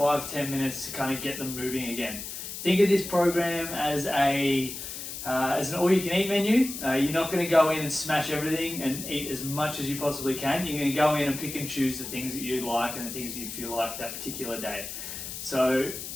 minutes to kind of get them moving again. Think of this program as an all-you-can-eat menu. You're not going to go in and smash everything and eat as much as you possibly can. You're going to go in and pick and choose the things that you like and the things that you feel like that particular day. So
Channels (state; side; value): noise; left; hiss, 8 dB below the sound